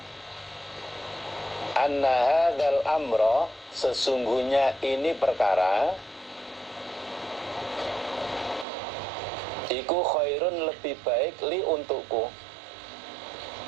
anna hadzal amra, sesungguhnya ini perkara, iku khairun, lebih baik, li, untukku,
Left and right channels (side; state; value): left; drops out; at 8.7 s